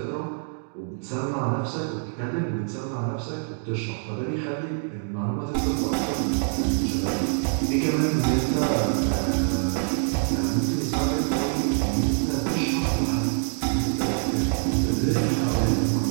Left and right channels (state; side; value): silent; left; 62 dB below the other